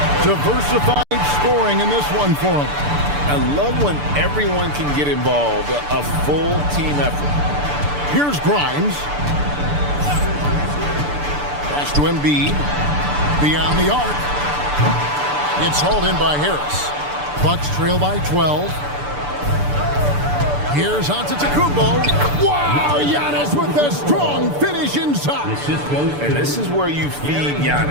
Diversified scoring in this one for him. I love when everyone can get involved. A full team effort. Here's Grimes. Pass to Embiid. Beyond the arc. It's hauled in by Harris. Bucks trail by 12. Here's Antetokounmpo. Wow, Giannis with a strong finish inside. And this is where you feed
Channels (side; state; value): left; late; 6.9 ms